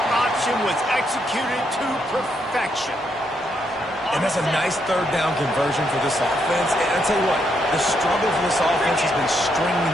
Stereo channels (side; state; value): both; normal; correlation 0.77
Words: option was executed to perfection. And that's a nice third down conversion for this offense. And I'll tell you what, the struggle for this offense has been stringing